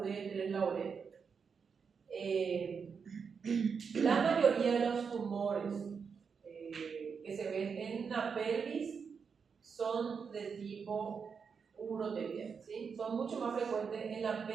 la uretra. La mayoría de los tumores que se ven en la pelvis son de tipo uroterial, ¿sí? Son mucho más frecuentes en la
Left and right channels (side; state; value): left; quieter; 6.0 dB